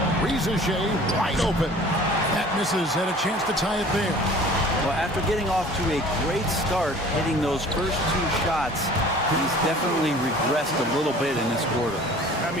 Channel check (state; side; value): normal; both; correlation 0.47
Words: Rizachet wide open. That misses. Had a chance to tie it there. Well, after getting off to a great start, hitting those first 2 shots, he's definitely regressed a little bit in this quarter. I